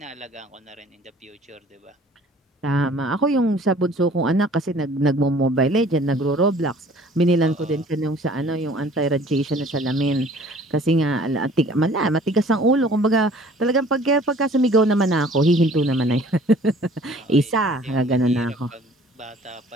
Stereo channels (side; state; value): both; normal; correlation 0.52